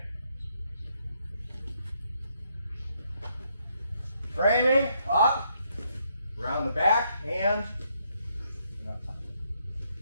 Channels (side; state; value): both; inverted; correlation -0.74